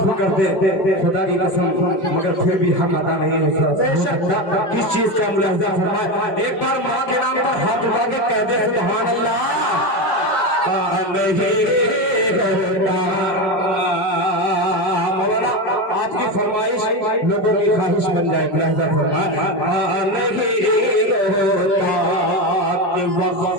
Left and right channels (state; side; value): late; right; 5.2 ms